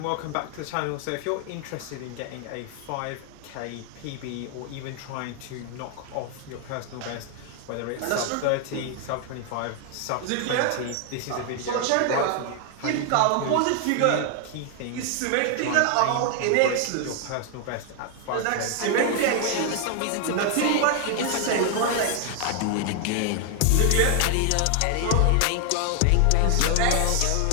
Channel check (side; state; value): both; different; correlation 0.00